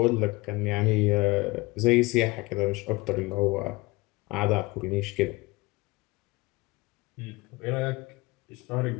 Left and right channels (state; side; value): quieter; right; 22.9 dB